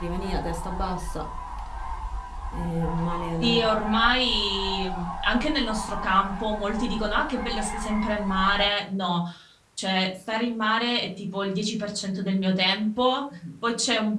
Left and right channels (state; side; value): identical; both; correlation 1.00